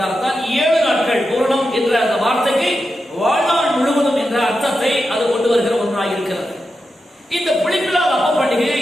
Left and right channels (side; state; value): both; normal; correlation 0.89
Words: 7 நாட்கள் பூரணம் என்ற அந்த வார்த்தைக்கு வாழ்நாள் முழுவதும் என்ற அர்த்தத்தை அது கொண்டு வருகிற ஒன்றாக இருக்கிறது. இந்த புளிப்பில்லாத அப்ப பண்டிகையை